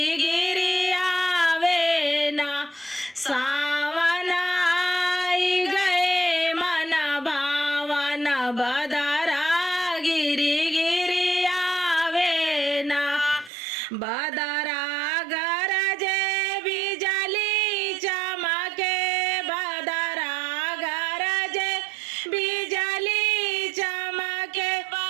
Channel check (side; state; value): left; drops out; at 13.5 s